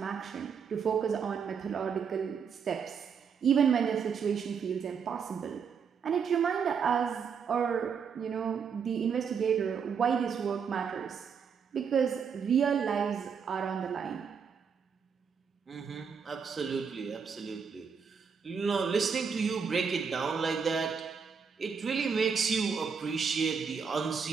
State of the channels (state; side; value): quieter; left; 6.4 dB